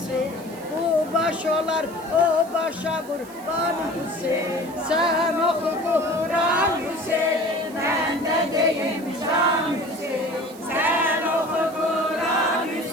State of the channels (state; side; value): noise; right; hiss, 21 dB below the sound